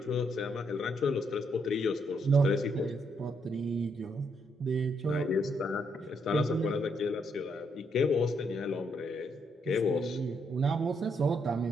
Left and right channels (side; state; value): both; normal; correlation 0.75